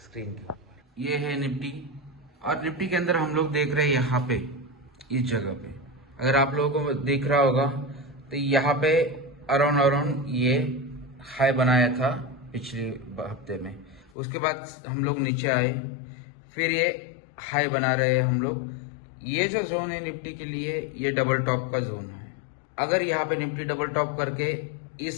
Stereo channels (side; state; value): right; drops out; at 14.1 s